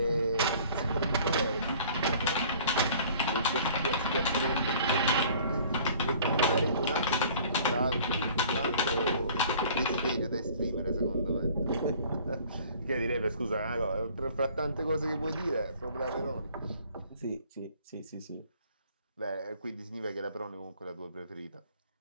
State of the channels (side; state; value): both; inverted; correlation -0.51